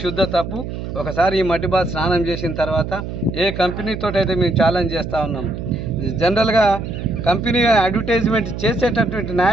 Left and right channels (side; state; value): right; noise; hum, 7 dB below the sound